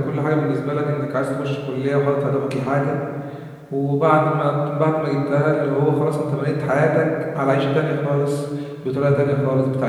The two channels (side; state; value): both; identical; correlation 1.00